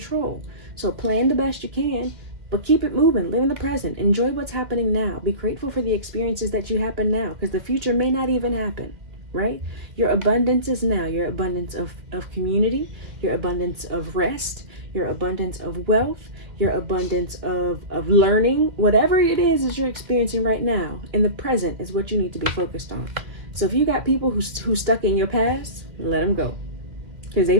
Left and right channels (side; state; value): left; late; 2.2 ms